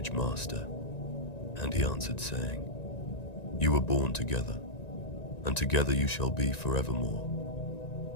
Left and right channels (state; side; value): late; right; 1.9 ms